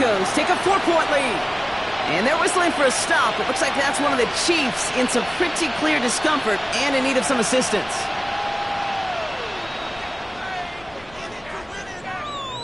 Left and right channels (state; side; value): noise; left; rumble, 24 dB below the sound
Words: take a 4-point lead. And they're whistling for a stop. It looks like that's one of the Chiefs in some pretty clear discomfort and in need of some assistance.